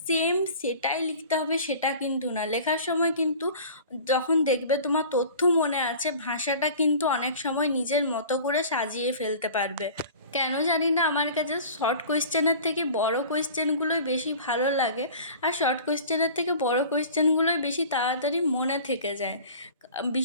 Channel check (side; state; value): both; inverted; correlation -0.42